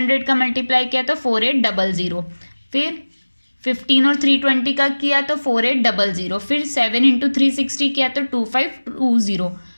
का मल्टीप्लाई किया तो 4800। फिर 15 और 320 का किया तो 4800। फिर 7 इंटू 360 किया तो 2520।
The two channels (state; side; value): inverted; both; correlation -1.00